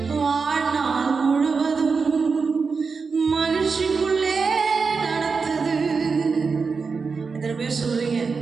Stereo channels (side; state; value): left; quieter; 4.9 dB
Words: வாழ்நாள் முழுவதும் மகிழ்ச்சிக்குள்ளே நடத்துது. எத்தனை பேர் சொல்றீங்க,